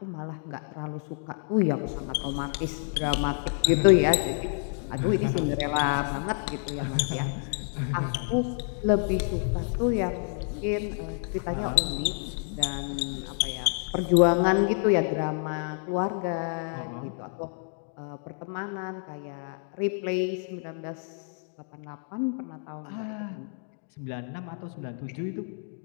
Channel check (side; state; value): right; silent; 56 dB below the other